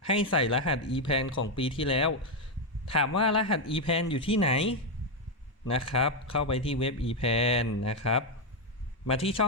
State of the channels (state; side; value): normal; both; correlation 0.04